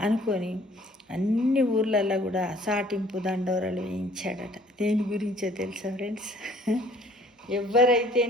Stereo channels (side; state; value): both; normal; correlation 0.56